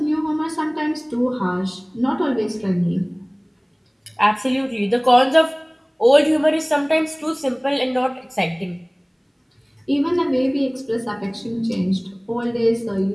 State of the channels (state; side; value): identical; both; correlation 1.00